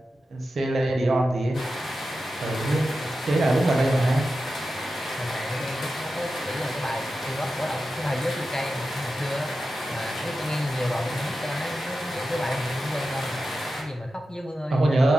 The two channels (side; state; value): both; normal; correlation 0.91